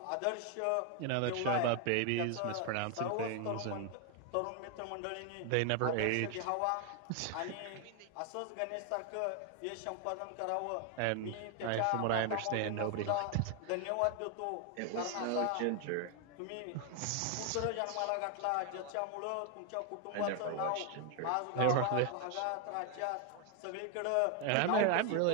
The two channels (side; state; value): both; different; correlation 0.01